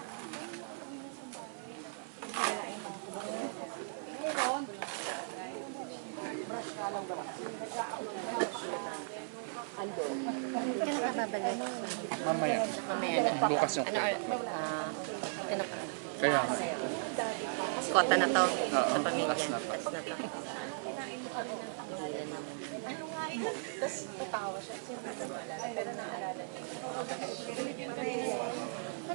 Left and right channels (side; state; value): left; silent; 53 dB below the other